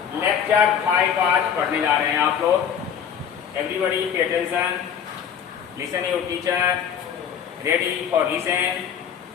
आज पढ़ने जा रहे हैं आप लोग. Everybody pay attention. Listen your teacher. Ready for listen.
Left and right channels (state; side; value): quieter; right; 8.1 dB